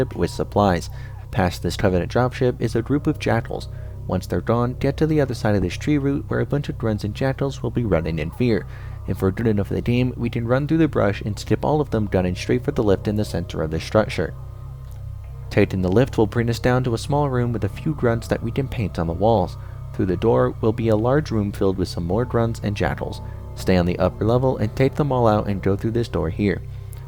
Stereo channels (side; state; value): both; identical; correlation 1.00